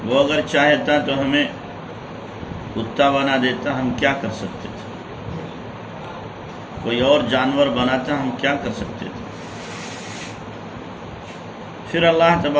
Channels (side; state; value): both; identical; correlation 1.00